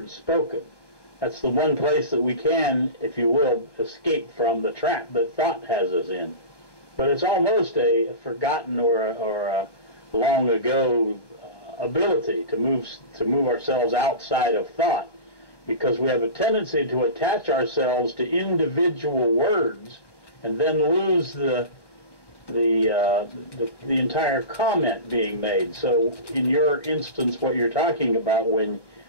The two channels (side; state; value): right; late; 1.1 ms